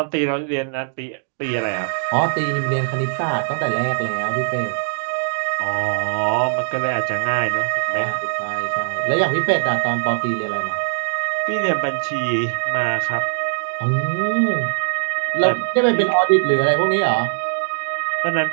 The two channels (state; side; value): silent; left; 64 dB below the other